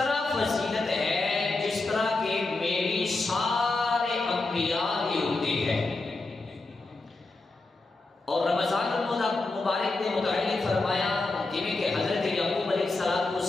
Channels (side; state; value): right; quieter; 3.3 dB